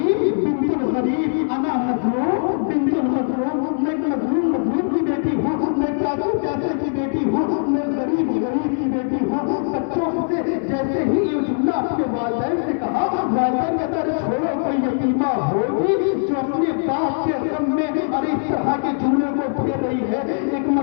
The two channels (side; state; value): right; silent; 60 dB below the other